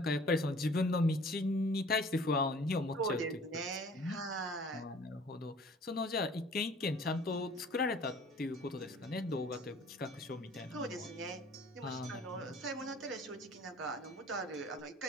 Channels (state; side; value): normal; both; correlation 0.50